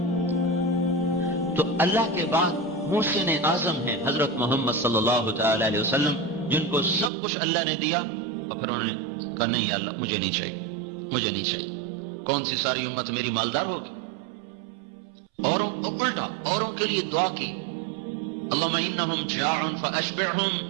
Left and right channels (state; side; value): drops out; left; at 7.1 s